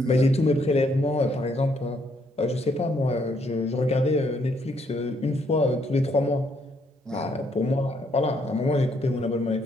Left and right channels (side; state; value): both; normal; correlation 0.71